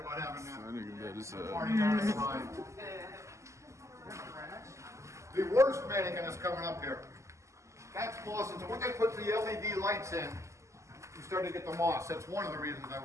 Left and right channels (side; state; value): left; late; 0.14 ms